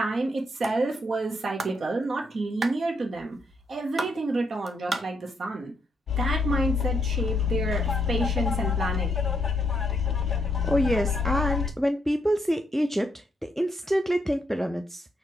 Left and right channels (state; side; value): normal; both; correlation 0.75